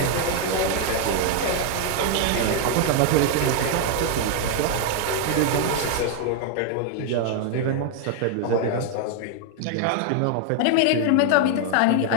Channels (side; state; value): both; different; correlation 0.00